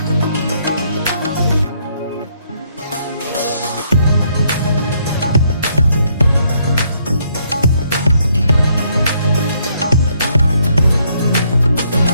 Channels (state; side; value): inverted; both; correlation -0.70